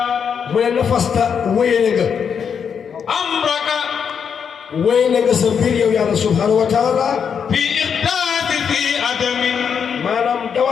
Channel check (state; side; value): quieter; right; 7.1 dB